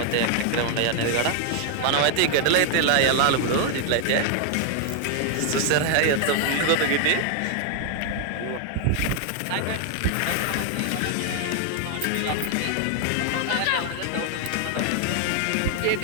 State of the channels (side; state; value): both; different; correlation 0.00